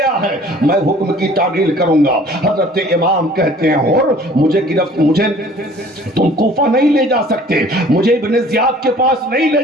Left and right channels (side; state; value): both; normal; correlation 0.51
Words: ہے میں حکم کی تعمیل کروں گا۔ حضرت امام کہتے ہیں حر مجھے تم کوفہ نہیں لے جا سکتے، مجھے ابن زیاد کے پاس نہیں لے